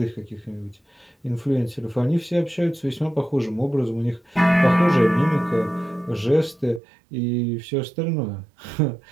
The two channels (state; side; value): drops out; left; at 6.8 s